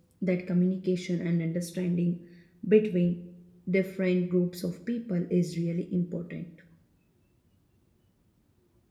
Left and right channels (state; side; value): identical; both; correlation 1.00